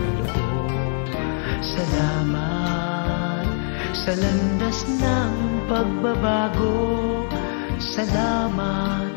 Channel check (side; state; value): right; silent; 64 dB below the other